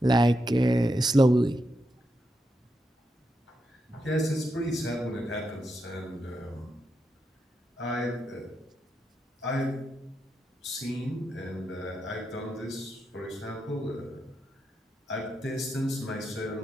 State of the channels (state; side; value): normal; both; correlation 0.85